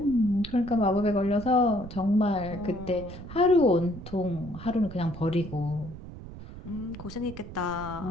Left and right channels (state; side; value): noise; right; rumble, 13 dB below the sound